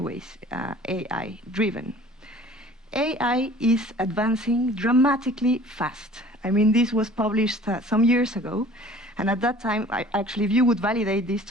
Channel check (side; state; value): both; normal; correlation 0.48